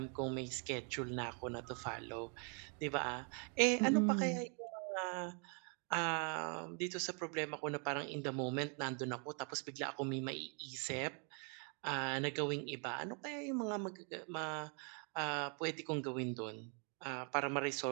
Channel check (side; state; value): left; quieter; 38.5 dB